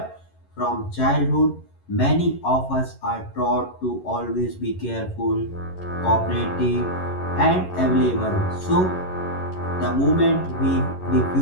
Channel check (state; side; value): late; right; 11 ms